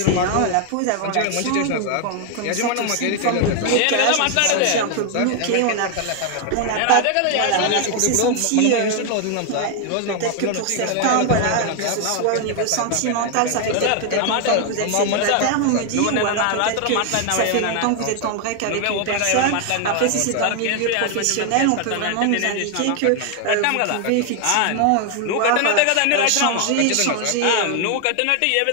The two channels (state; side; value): different; both; correlation 0.00